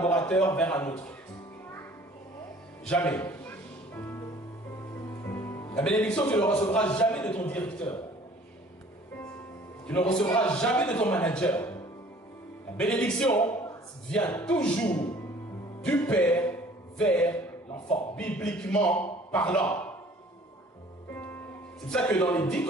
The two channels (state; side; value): normal; both; correlation 0.52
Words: vers un autre. Jamais. La bénédiction, tu ne la recevras jamais de ton directeur. Tu ne recevras jamais de ton manager. La bénédiction vient toujours du Père vers l'enfant, bibliquement parlant. C'est pour ça que dans les 10